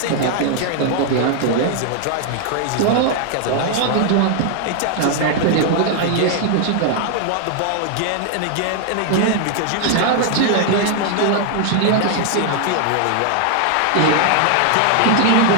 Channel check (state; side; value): different; both; correlation 0.00